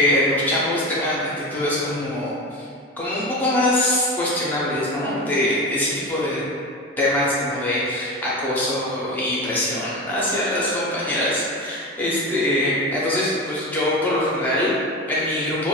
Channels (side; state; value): both; normal; correlation 0.24